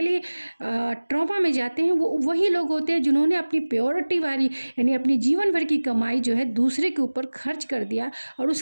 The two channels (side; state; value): both; inverted; correlation -1.00